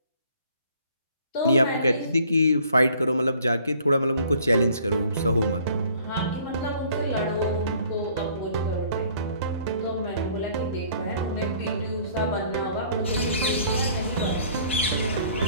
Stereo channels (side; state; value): both; inverted; correlation -0.57